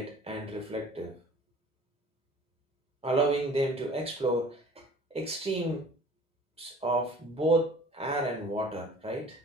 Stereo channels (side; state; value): both; normal; correlation 0.48